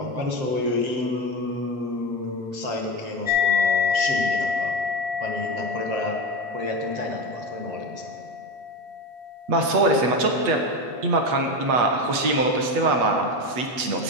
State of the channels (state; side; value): late; left; 8.2 ms